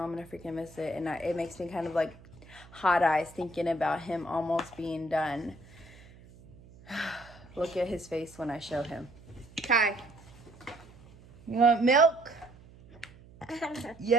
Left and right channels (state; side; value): noise; right; hum, 22 dB below the sound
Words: I'm gonna freaking miss it, and it makes me kind of like hot eyes thinking about him almost being done. Look at his face when I show him. Kai, you want milk?